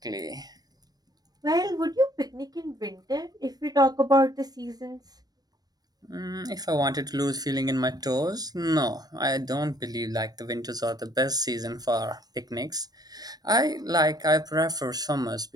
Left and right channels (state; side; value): late; left; 0.19 ms